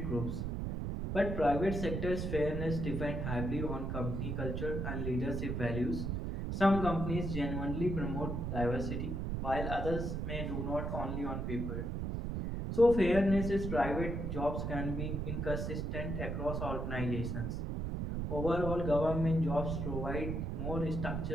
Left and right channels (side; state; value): right; noise; rumble, 2 dB below the sound